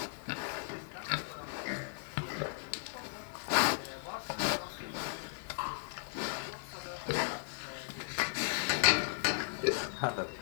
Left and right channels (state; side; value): silent; right; digital silence